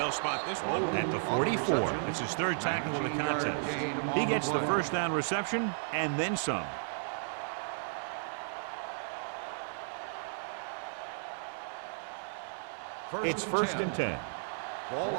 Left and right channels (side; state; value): left; silent; 55 dB below the other